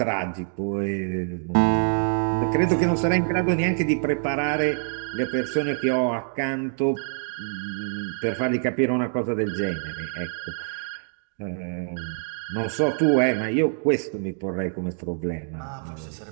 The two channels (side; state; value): left; silent; digital silence